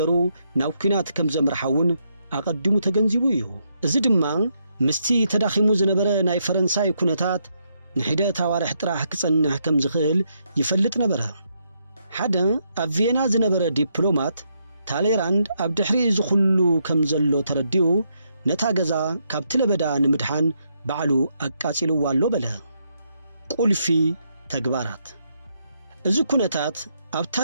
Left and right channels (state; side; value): inverted; both; correlation -0.77